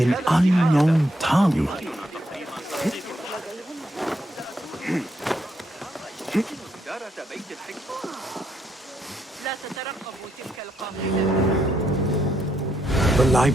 unknown tongue? The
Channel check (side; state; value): both; normal; correlation 0.77